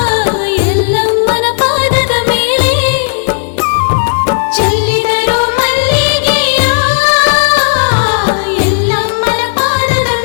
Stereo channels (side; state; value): right; silent; digital silence